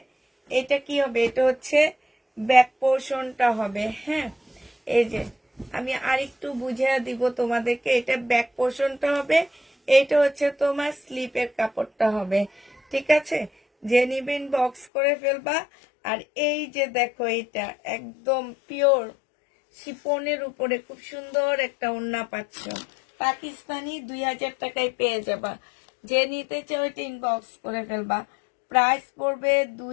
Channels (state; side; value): drops out; right; at 14.9 s